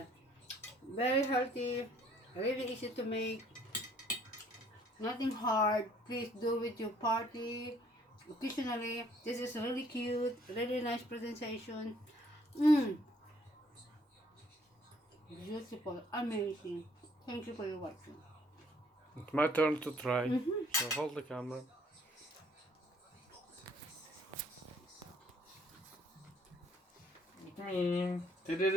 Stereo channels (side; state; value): both; normal; correlation 0.62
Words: Very healthy. Really easy to make. Nothing hard. Please do with your party. Occasionally. This is really cute. Really nice presentation. Beautiful. Amazing. Thank you for your watching. It's my turn to try. So hold the camera.